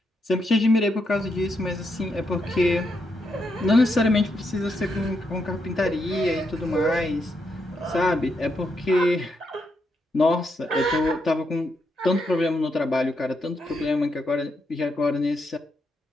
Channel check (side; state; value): both; normal; correlation 0.81